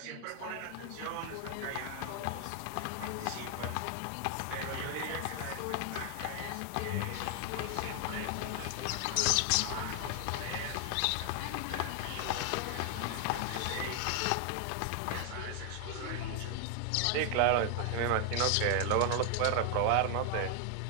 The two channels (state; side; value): different; both; correlation 0.00